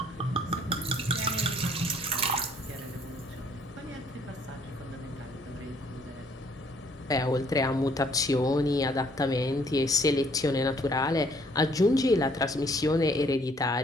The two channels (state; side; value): normal; both; correlation 0.63